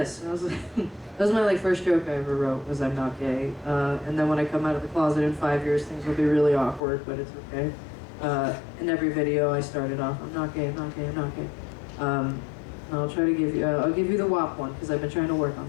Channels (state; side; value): drops out; right; at 6.8 s